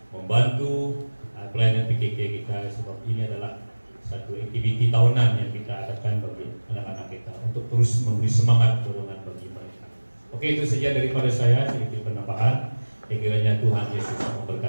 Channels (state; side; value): inverted; both; correlation -1.00